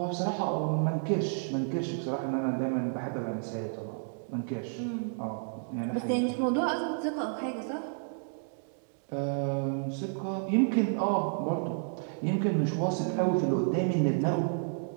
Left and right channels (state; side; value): silent; left; digital silence